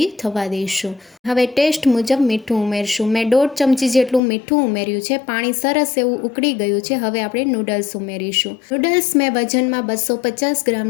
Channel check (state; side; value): drops out; right; at 4.2 s